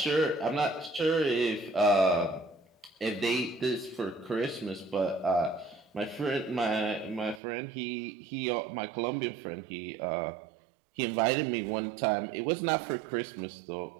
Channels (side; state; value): left; drops out; at 7.4 s